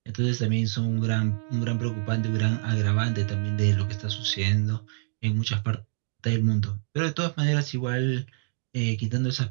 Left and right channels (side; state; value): left; silent; digital silence